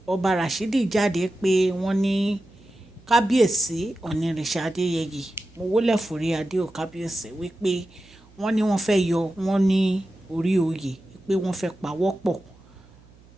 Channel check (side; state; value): right; noise; hum, 26 dB below the sound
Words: ọba Rashidi jáde pé wọ́n ní kábíyèsí onírìṣà Adéyẹyè mo wólẹ̀ forí adé ò kábíyèsí wípé wọ́n ní wọ́n fẹ́ yọ wọ́n ní orí oyè pé wọ́n fẹ́ pawọ́pọ̀